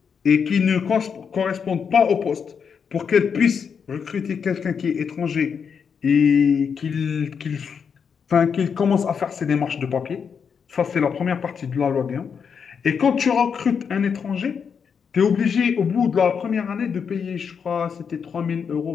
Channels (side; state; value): right; quieter; 6.6 dB